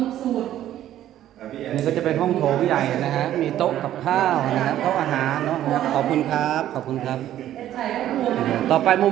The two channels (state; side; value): quieter; left; 12.3 dB